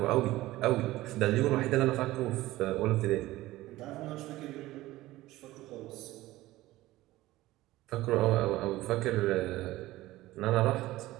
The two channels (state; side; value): quieter; left; 17.1 dB